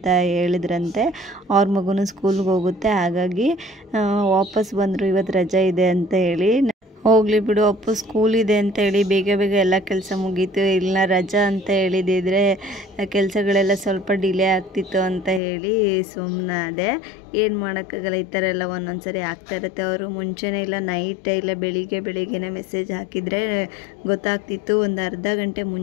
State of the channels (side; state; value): right; drops out; at 15.4 s